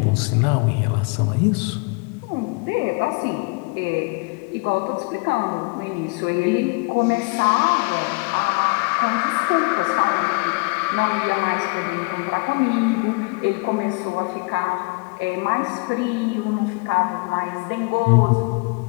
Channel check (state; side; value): quieter; right; 30.6 dB